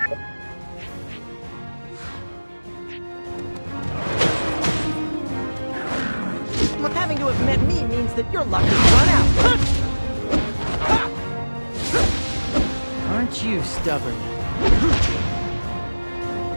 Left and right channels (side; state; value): both; inverted; correlation -1.00